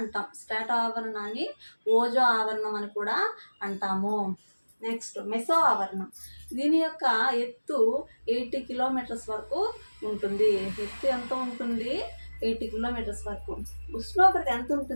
స్ట్రాటో ఆవరణాన్ని ఓజో ఆవరణం అని కూడా అంటాము. నెక్స్ట్, మెసో ఆవరణం. దీని యొక్క ఎత్తు 80 కిలోమీటర్స్ వరకు ఉంటుంది. ఎత్తు ఎంత ఉంటుంది? 80 కిలోమీటర్స్ వరకు. ఉష్ణోగ్రత ఎంత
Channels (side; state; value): both; inverted; correlation -1.00